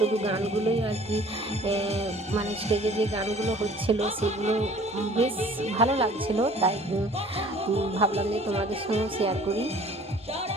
গানগুলোই আর কি। স্টেজে যে গানগুলো হচ্ছিল সেগুলো বেশ ভালো লাগছিল, তাই ভাবলাম যে তোমাদের সঙ্গে শেয়ার করি।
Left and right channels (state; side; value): normal; both; correlation 0.51